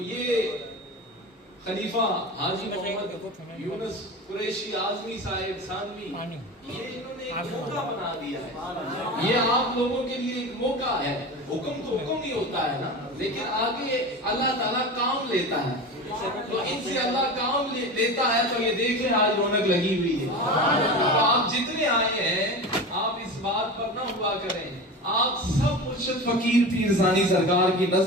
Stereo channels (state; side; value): normal; both; correlation 0.29